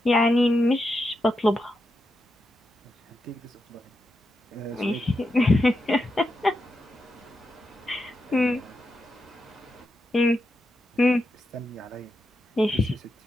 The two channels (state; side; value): normal; both; correlation 0.86